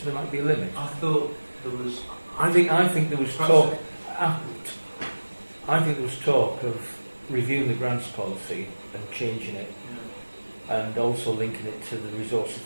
there might be a limit? I thought there was. I think there was talk. I think there was talk of reviewing the grants policy and changing it, and also linking it to the resources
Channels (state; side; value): inverted; both; correlation -1.00